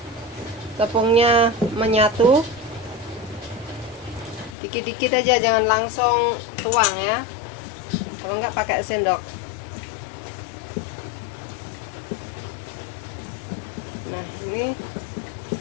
tepungnya menyatu. Dikit-dikit aja, jangan langsung tuang ya, kalau nggak pakai sendok. Nah, ini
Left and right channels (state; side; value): drops out; right; at 4.5 s